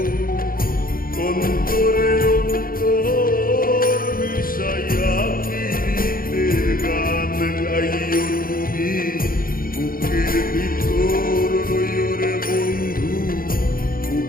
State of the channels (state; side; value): late; right; 0.42 ms